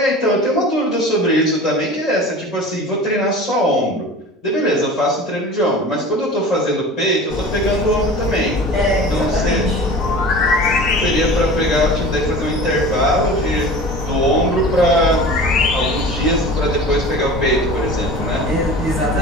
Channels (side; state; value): both; normal; correlation 0.37